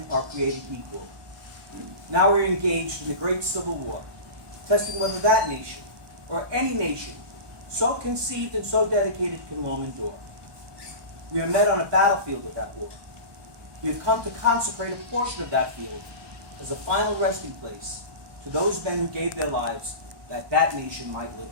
are created equal. Now we're engaged in the great Civil War, testing whether that nation, or any nation, so conceived and so dedicated can long endure. We are met on a battlefield of that war. We have come to consecrate a portion of that field as a final resting place to those men who gave their lives that that nation might live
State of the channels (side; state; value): left; late; 1.2 ms